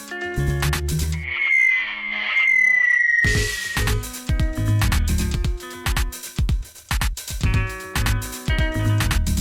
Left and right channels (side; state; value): both; identical; correlation 1.00